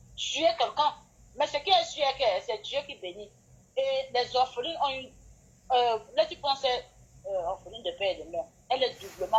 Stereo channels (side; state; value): both; identical; correlation 1.00